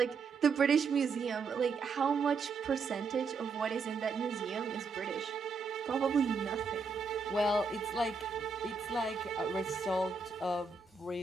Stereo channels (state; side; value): quieter; left; 4.7 dB